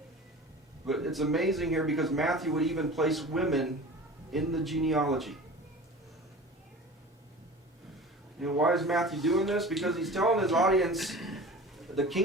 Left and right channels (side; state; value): both; normal; correlation 0.38